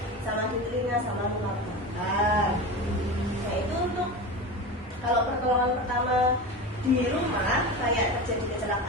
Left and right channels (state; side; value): normal; both; correlation 0.26